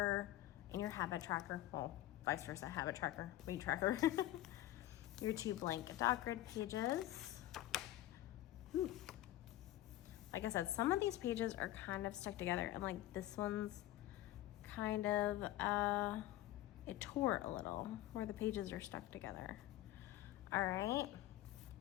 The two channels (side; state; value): right; quieter; 14.9 dB